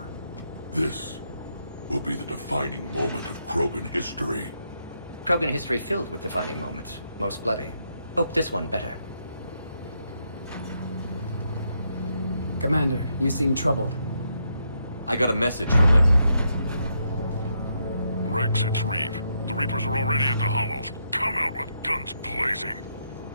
This will be the defining moment of Krogan history. Krogan history filled with defining moments. Most bloody. Hope this one better. Commander, you seem troubled. I got a message from them. Rex, it's Reeve. The Reapers are already at the Hollows. Come out with guns blazing.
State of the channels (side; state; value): both; inverted; correlation -0.79